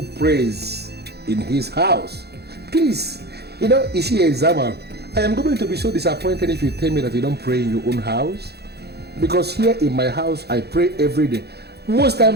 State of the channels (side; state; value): left; late; 0.48 ms